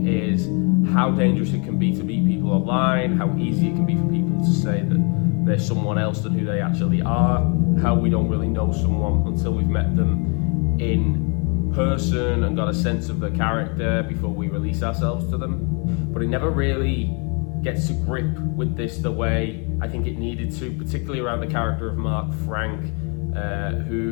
is how dangerous it can be to meet people online, how easy it can be for people to say that they're someone else than who they actually are, how we don't really know someone until we've met them in person and got a sense of their character before we release ourselves to them. But it never really gets to grip with this the way I think it needed to, particularly around the character of Mark Frank,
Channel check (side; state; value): right; quieter; 35.0 dB